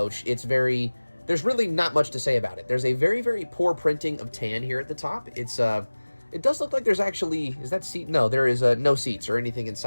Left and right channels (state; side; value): inverted; both; correlation -1.00